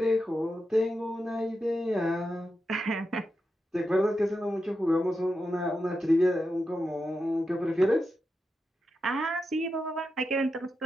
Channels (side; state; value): both; normal; correlation 0.88